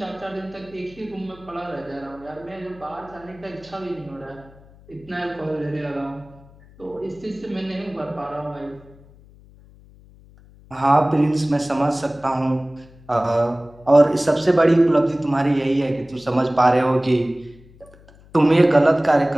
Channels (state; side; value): noise; left; hum, 25 dB below the sound